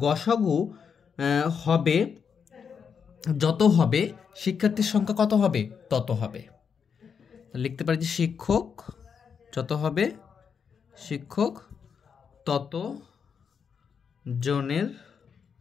গসাগু হবে, যত হবে শিক্ষার্থীর সংখ্যা কত হবে? তত হবে। লিখতে পারি যে শিক্ষক যত হবে, শিক্ষক তত জনের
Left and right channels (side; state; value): right; quieter; 6.6 dB